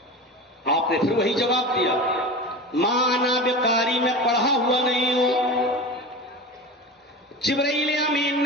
آپ نے پھر وہی جواب دیا، ما انا بقاری، میں پڑھا ہوا نہیں ہوں۔ جبرائیل امین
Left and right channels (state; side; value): normal; both; correlation 0.30